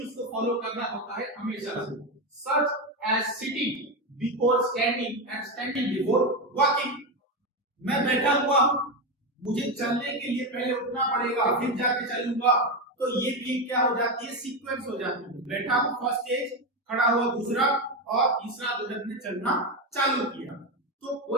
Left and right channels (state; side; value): normal; both; correlation 0.13